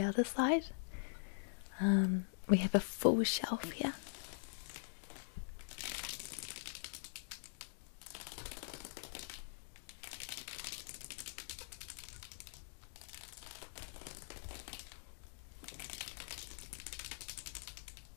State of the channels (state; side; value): silent; right; digital silence